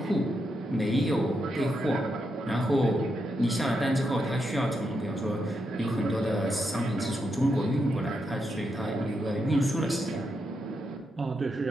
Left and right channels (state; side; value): normal; both; correlation 0.83